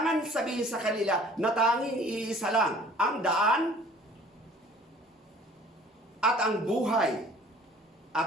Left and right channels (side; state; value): both; normal; correlation 0.51